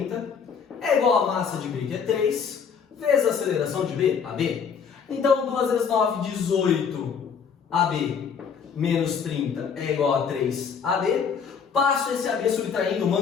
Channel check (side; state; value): right; quieter; 6.6 dB